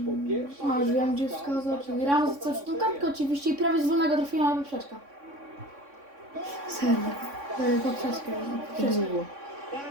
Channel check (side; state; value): left; late; 3.6 ms